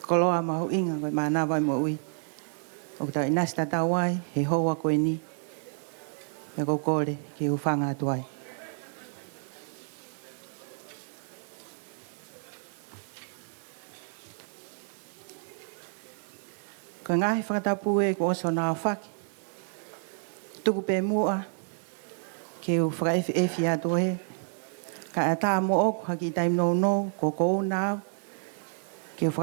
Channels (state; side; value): silent; left; digital silence